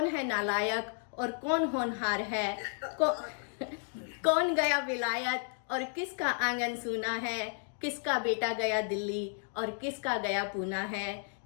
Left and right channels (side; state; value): right; silent; 56 dB below the other